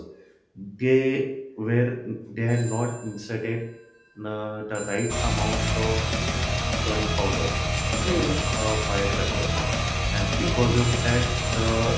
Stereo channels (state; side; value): identical; both; correlation 1.00